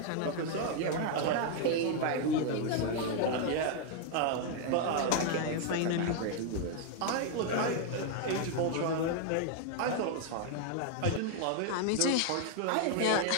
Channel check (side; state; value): both; different; correlation 0.00